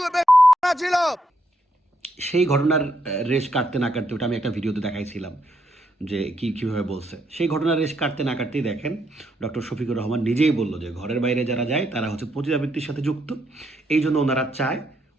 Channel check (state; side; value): normal; both; correlation 0.76